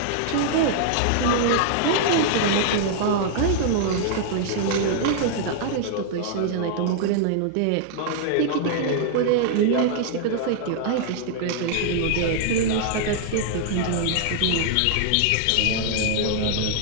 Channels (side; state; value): both; different; correlation -0.01